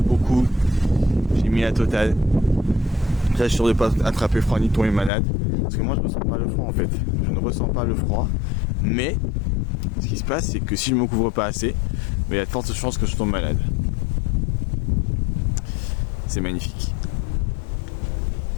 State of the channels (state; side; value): drops out; right; at 5.1 s